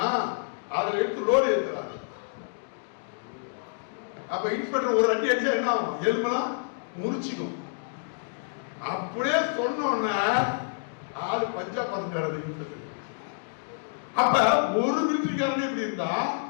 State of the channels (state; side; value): silent; right; digital silence